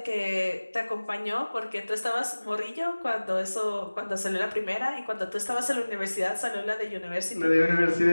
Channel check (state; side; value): inverted; both; correlation -1.00